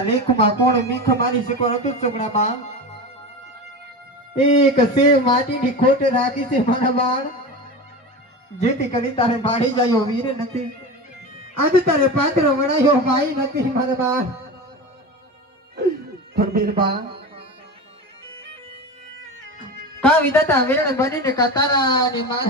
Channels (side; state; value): both; normal; correlation 0.26